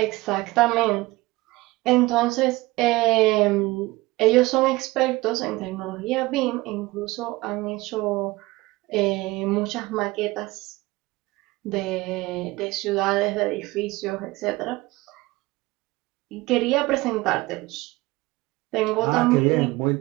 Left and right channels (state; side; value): quieter; left; 20.6 dB